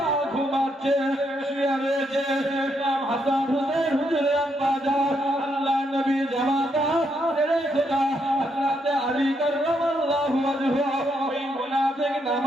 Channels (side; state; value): both; normal; correlation 0.77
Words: ঘুমাচ্ছে, শুয়ে রয়েছে। ইমাম হাসান হুসাইন হুজুরের আম্মা জান আল্লাহ নবী জামাতা রে খোদা হযরত আলী কাররামাল্লাহু ওয়াজহু ওই মুনাফিক